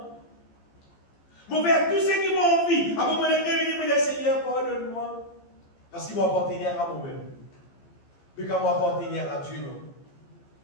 Je faire tout ce qui m'a envie. Avant mon existe, je dis, oui, Seigneur, pardonne-moi. Parce qu'il m'appartenir à moi-même. Mais quand m'appartenir à Dieu, non.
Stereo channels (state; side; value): late; right; 15 ms